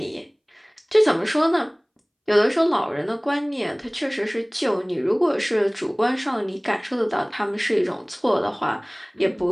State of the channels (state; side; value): identical; both; correlation 1.00